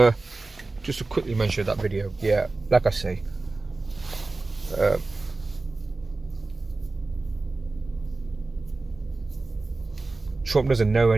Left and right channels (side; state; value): left; quieter; 3.4 dB